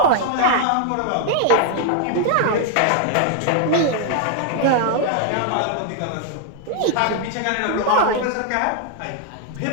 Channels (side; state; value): both; different; correlation 0.00